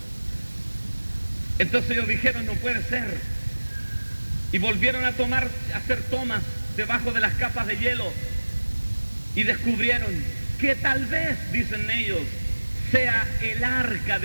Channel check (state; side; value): inverted; both; correlation -1.00